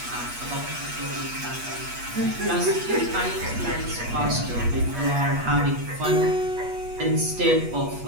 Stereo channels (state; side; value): late; left; 8.3 ms